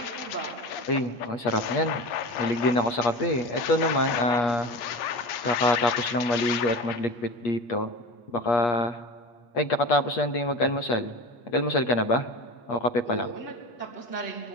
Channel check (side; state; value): right; late; 8.4 ms